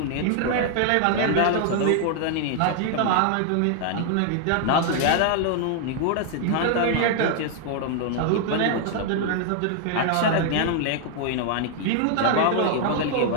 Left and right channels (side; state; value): both; different; correlation 0.00